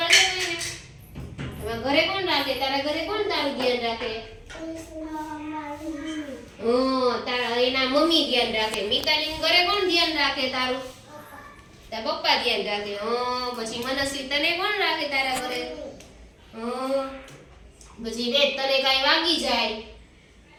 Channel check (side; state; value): both; identical; correlation 1.00